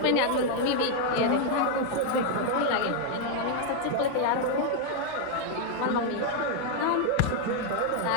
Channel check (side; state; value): both; different; correlation 0.00